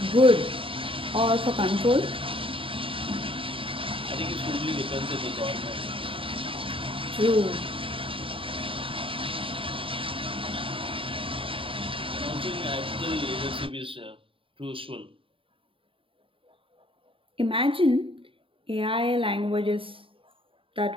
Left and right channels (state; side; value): late; left; 0.26 ms